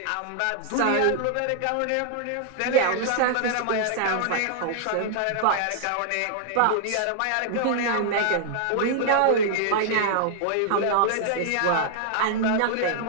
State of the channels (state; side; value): different; both; correlation -0.01